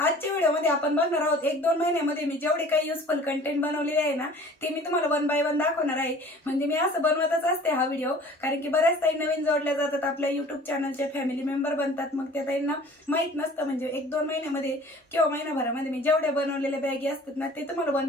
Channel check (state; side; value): normal; both; correlation 0.47